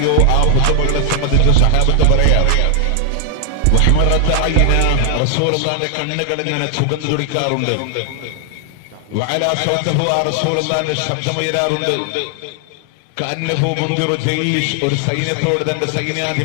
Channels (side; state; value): both; different; correlation 0.00